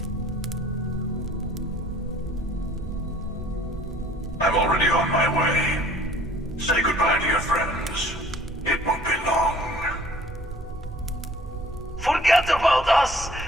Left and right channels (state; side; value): normal; both; correlation 0.53